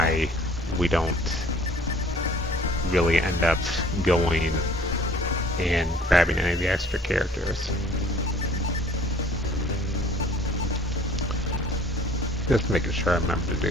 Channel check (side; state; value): both; normal; correlation 0.54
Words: we don't really end up going and grabbing any of the extra characters. Just making sure I remember to